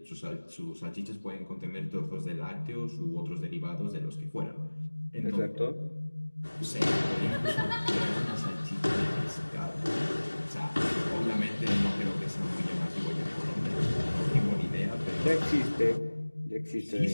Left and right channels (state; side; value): inverted; both; correlation -1.00